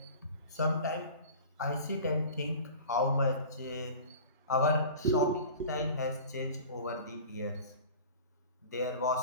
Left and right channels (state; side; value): inverted; both; correlation -0.39